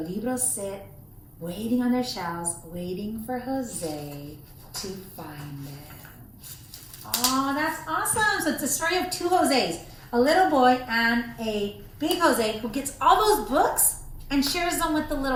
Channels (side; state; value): both; identical; correlation 1.00